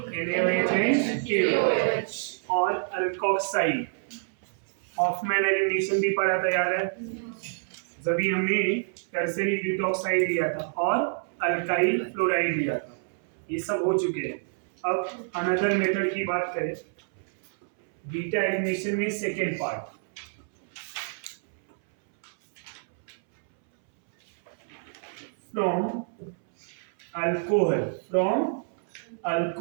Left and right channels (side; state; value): left; silent; 60 dB below the other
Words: NaOH KOH और अल्कोक्साइड. हॉफमैन एलिमिनेशन भी पढ़ा था, याद है? जब हमने टर्सरी ब्यूटॉक्साइड लिया था और अल्काइल फ्लोराइड लिया था. ये सब हो चुके हैं. अब अनदर मेथड की बात करें, बीटा एलिमिनेशन में second part. From alcohol